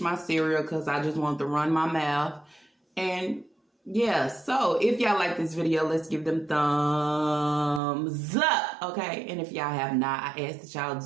my cereal because I just want to run my mouth. And yeah, so if y'all like this video, let's give them thumbs up, okay? And if y'all have not, I ask that y'all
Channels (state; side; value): drops out; left; at 7.8 s